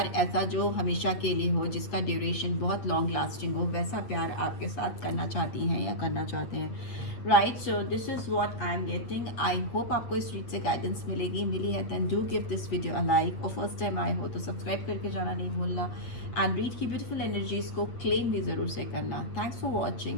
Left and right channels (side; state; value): right; late; 8.5 ms